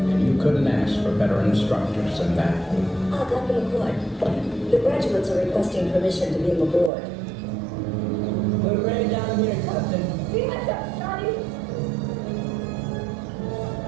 And you couldn't ask for better instructors than that. Dr. McCoy, the graduates are requesting permission to beam aboard. We're ready down here, Captain. Be much up, Scotty.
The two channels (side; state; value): left; drops out; at 6.9 s